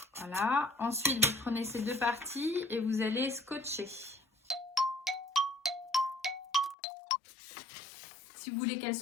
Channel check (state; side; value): drops out; right; at 6.8 s